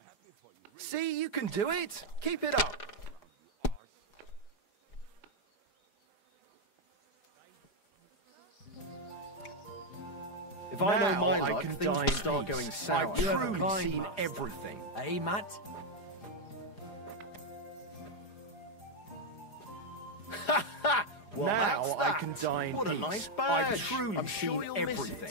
happy for you. See, you can do it. Keep it up. If I know my luck, things will start going sour. I've truly seen everything. Eh, Matt? Well, now I can die in peace. What a nice badge. I've truly seen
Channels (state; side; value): late; right; 4.9 ms